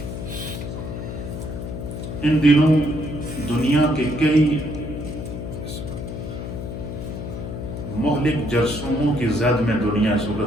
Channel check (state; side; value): noise; left; hum, 7 dB below the sound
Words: ان دنوں دنیا کے کئی مہلک جرثوموں کی زد میں دنیا اس